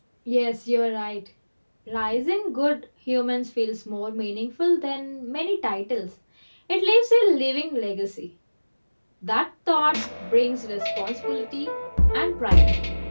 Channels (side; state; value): both; inverted; correlation -1.00